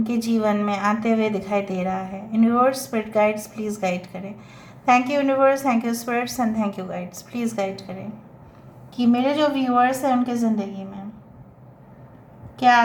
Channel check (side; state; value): both; identical; correlation 1.00